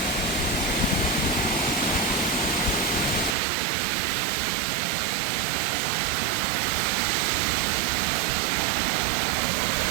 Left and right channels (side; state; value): left; drops out; at 3.4 s